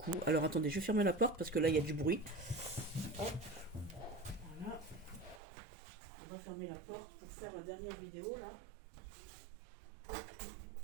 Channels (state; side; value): drops out; left; at 5.4 s